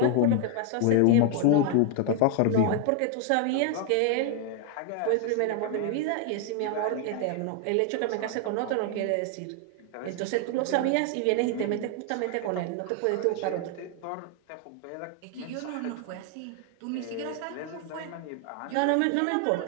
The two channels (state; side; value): different; both; correlation 0.00